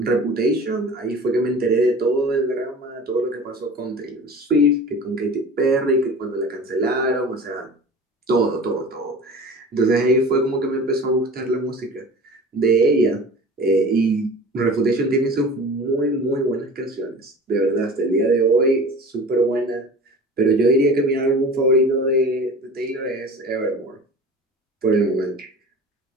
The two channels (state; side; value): normal; both; correlation 0.39